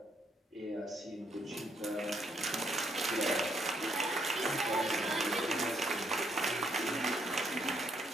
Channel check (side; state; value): both; normal; correlation 0.73